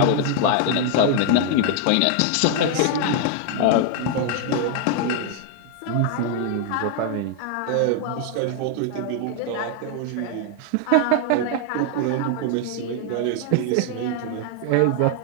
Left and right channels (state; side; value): different; both; correlation 0.00